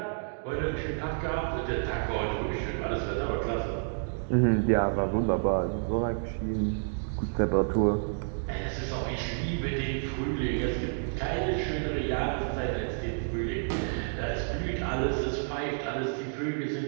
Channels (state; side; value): silent; left; digital silence